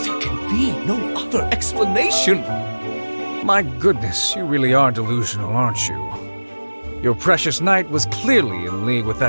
can be no other explanation. My goodness, you really are delusional, aren't you? Your precious knight was clearly in league with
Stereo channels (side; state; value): both; inverted; correlation -1.00